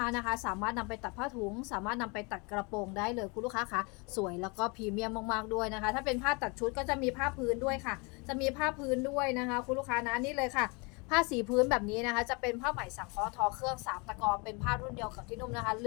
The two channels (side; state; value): right; quieter; 30.2 dB